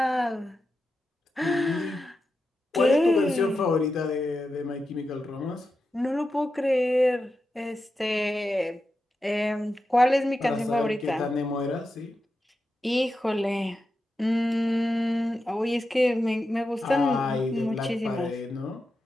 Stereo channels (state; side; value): normal; both; correlation 0.90